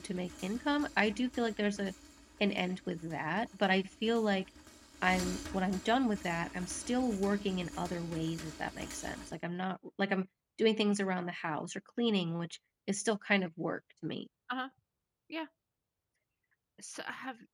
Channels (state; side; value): identical; both; correlation 1.00